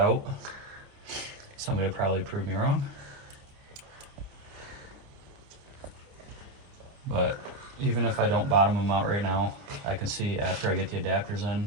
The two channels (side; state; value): left; late; 29 ms